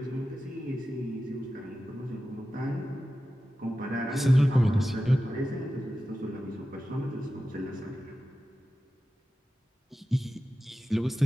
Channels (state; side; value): normal; both; correlation 0.93